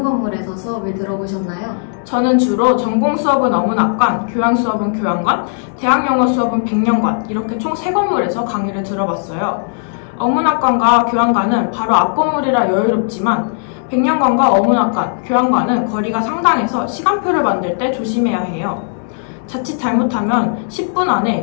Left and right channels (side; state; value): right; silent; 69 dB below the other